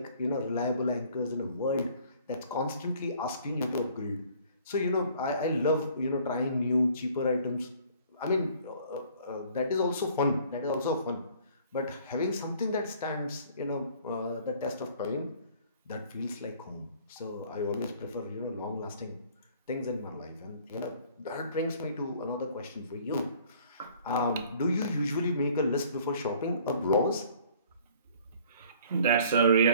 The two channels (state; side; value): inverted; both; correlation -0.54